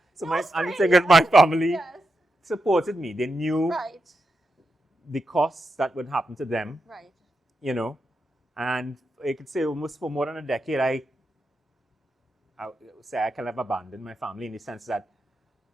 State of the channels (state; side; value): normal; both; correlation 0.87